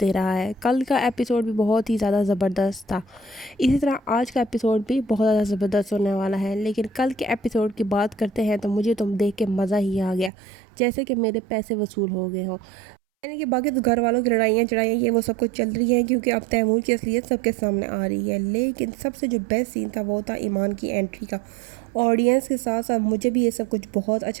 دے رہا ہے۔ کل کا ایپیسوڈ بھی بہت ہی زیادہ زبردست تھا، اسی طرح آج کا ایپیسوڈ بھی بہت زیادہ زبردست ہونے والا ہے۔ لیکن کل کے ایپیسوڈ کی بات کرتے ہیں تو مجھے تم دیکھ کے مزہ ہی آ گیا، جیسے کہ میرے پیسے وصول ہو گئے ہوں۔ یعنی کہ باقی تو گھر والوں کی لڑائیاں چڑھائیاں یہ وہ سب کچھ چل رہی ہیں، کیونکہ اب تیمور کی اصلیت سب کے سامنے آ رہی ہے۔ لیکن سب سے جو بیسٹ سین تھا وہ تھا ایمان کی انٹری کا۔ آڈینس کے ساتھ ساتھ مجھے بھی یہ سب کچھ بہت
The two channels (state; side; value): drops out; left; at 10.3 s